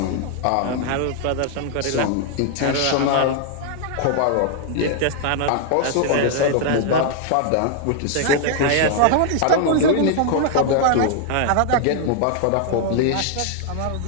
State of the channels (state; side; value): different; both; correlation -0.01